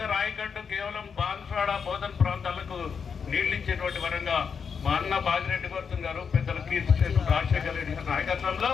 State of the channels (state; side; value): quieter; right; 6.3 dB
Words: ఆయకట్టు కేవలం బాన్స్వాడ, బోధన్ ప్రాంతాలకు నీళ్లు ఇచ్చేటువంటి వరంగా మా అన్న బాజిరెడ్డి గౌతమ్ గారు, పెద్దల కీర్తిశేషు రాజశేఖర రెడ్డి గారి నాయకత్వంలో